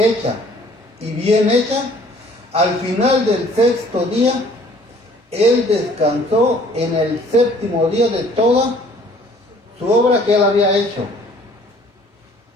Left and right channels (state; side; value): normal; both; correlation 0.56